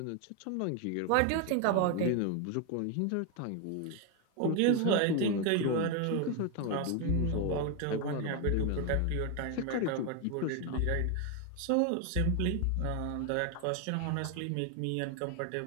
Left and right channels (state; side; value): different; both; correlation 0.01